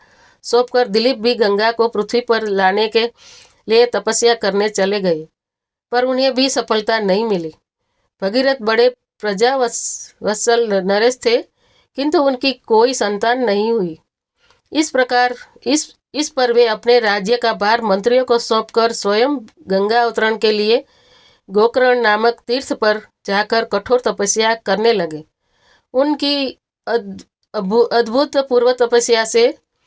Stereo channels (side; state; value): both; identical; correlation 1.00